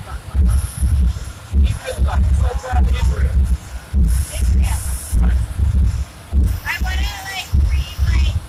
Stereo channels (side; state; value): both; identical; correlation 1.00